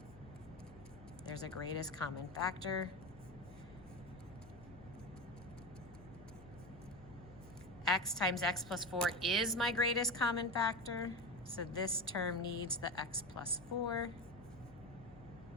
There's a greatest common factor. X times x plus 4 is my greatest common factor. So this term needs the x plus 4.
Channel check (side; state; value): left; noise; hum, 20 dB below the sound